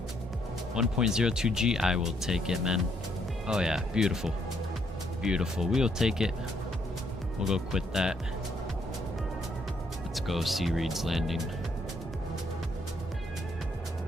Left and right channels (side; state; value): both; normal; correlation 0.72